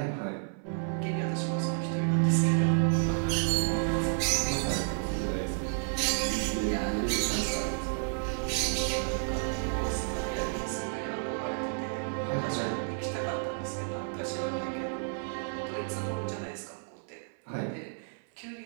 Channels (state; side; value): silent; left; 57 dB below the other